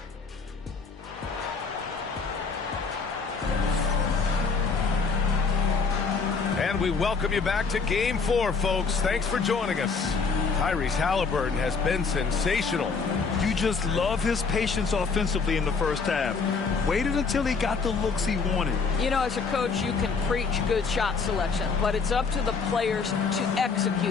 And we welcome you back to Game 4, folks. Thanks for joining us. Tyrese Halliburton has been sensational. You just love his patience offensively in the first half. Waited until he got the looks he wanted. You know, as a coach, you can preach good shot selection, but it's up to the players to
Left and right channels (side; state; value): right; quieter; 5.0 dB